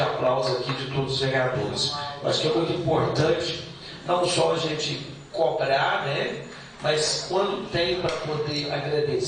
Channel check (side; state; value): both; identical; correlation 1.00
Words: aqui de todos os vereadores. Eu acho que é muito importante, não só a gente cobrar, né, mas quando tem para poder